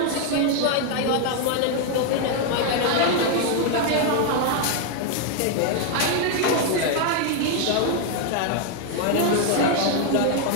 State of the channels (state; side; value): different; both; correlation 0.01